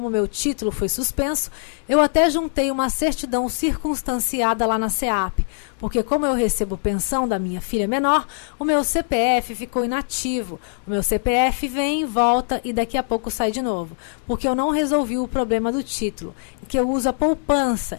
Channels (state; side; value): silent; right; digital silence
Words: meu título foi suspenso, eu até juntei uma certidão circunstanciada lá na CEAP, porque como eu recebo pensão da minha filha menor, o meu CPF ficou inativo. O meu CPF vem, volta e daqui a pouco sai de novo, porque eu não resolvi o problema do título, que eu uso a